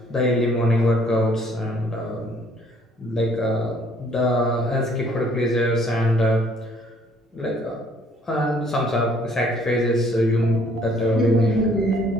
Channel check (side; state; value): both; normal; correlation 0.61